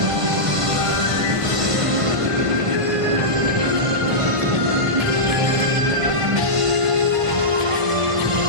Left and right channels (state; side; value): late; left; 1.5 ms